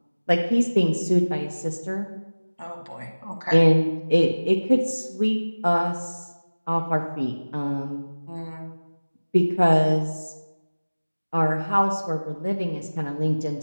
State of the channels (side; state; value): both; inverted; correlation -1.00